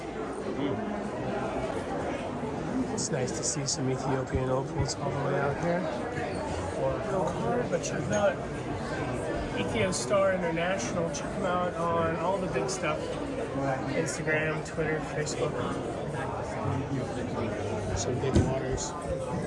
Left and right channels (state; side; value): identical; both; correlation 1.00